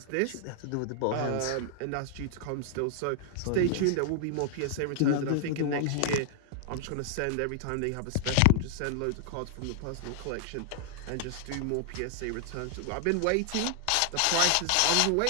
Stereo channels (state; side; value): different; both; correlation -0.01